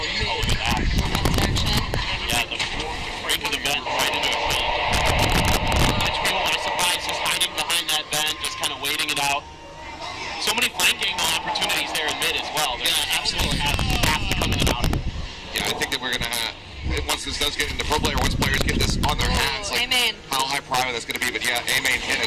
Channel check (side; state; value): both; identical; correlation 1.00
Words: look at that. Yeah, right into the vent, right into the feed. Bunch of people are surprised just hiding behind that vent, just kind of waiting it out. So many flank angle opportunities there in mid as well. Yeah, absolutely. Have to come in and out. Yeah, I think that we're gonna once this does get into pro player, once players get this on their hands, like A-main. how high prior that's gonna be. But yeah, A-main hit